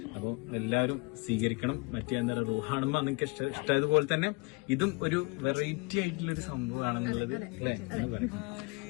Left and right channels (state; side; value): quieter; right; 28.3 dB